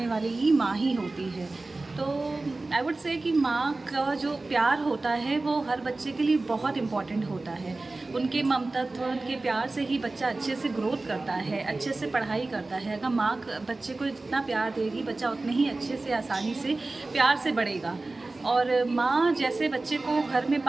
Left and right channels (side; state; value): left; quieter; 3.2 dB